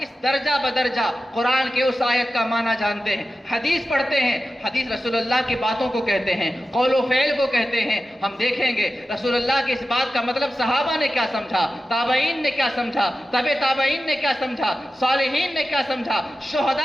درجہ بدرجہ قرآن کے اس آیت کا معنی جانتے ہیں. حدیث پڑھتے ہیں، حدیث رسول اللہ کی باتوں کو کہتے ہیں، قول و فعل کو کہتے ہیں. ہم دیکھیں گے رسول اللہ کی اس بات کا مطلب صحابہ نے کیا سمجھا، تابعین نے کیا سمجھا، تبع تابعین نے کیا سمجھا، صالحین نے کیا سمجھا،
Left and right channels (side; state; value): both; normal; correlation 0.93